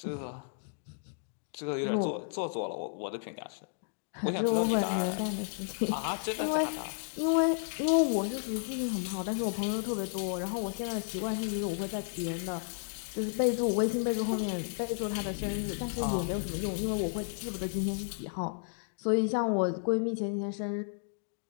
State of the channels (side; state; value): right; silent; digital silence